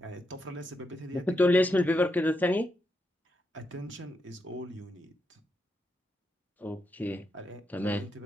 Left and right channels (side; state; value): both; normal; correlation 0.83